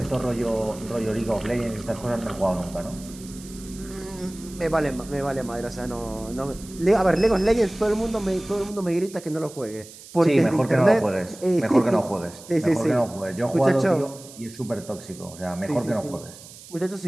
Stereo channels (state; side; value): noise; right; hiss, 18 dB below the sound